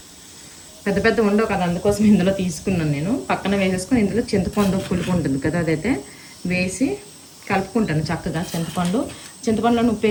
పెద్ద పెద్ద ఉండవు కదా, అందుకోసం ఇందులో తీసుకున్నాను నేను. పక్కన వేసేసుకొని ఇందులో చింతపండు పులుపు ఉంటుంది కదా, అదైతే వేసి కలుపుకుంటాను చక్కగా. చింతపండులో ఉప్పు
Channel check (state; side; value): identical; both; correlation 1.00